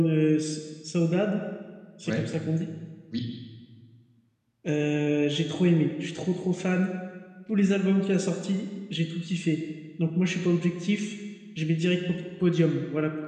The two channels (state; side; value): identical; both; correlation 1.00